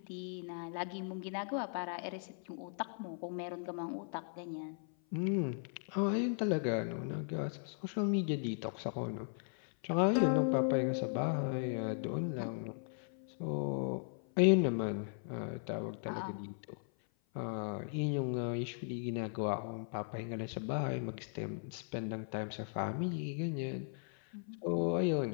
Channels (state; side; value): silent; right; 53 dB below the other